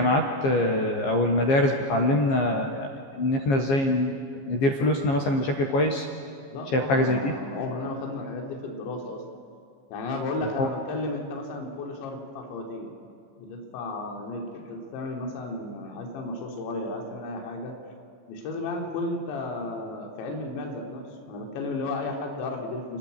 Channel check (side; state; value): right; late; 15 ms